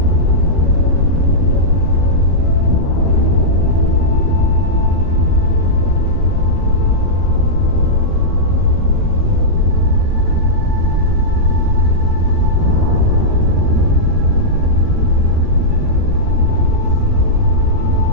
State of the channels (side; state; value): left; late; 13 ms